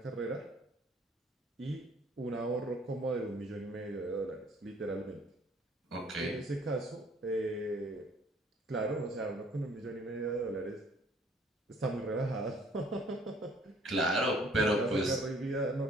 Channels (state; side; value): normal; both; correlation 0.58